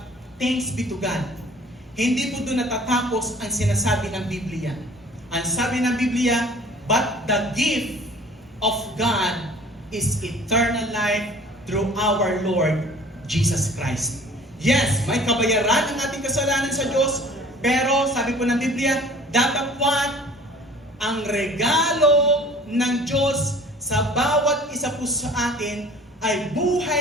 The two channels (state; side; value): normal; both; correlation 0.48